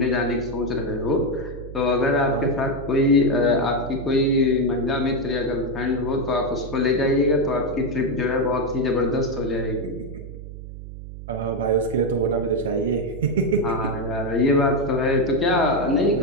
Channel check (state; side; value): noise; right; hum, 12 dB below the sound